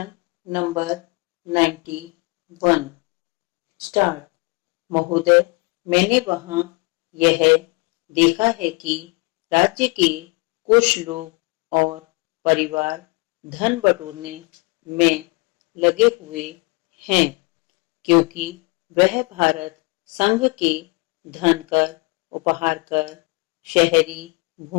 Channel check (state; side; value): quieter; right; 28.8 dB